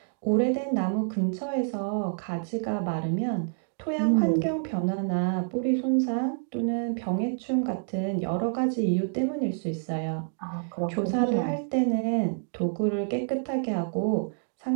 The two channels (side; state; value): left; silent; digital silence